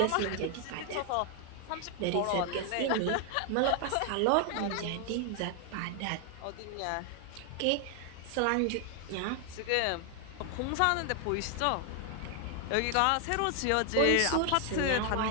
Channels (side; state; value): both; different; correlation 0.00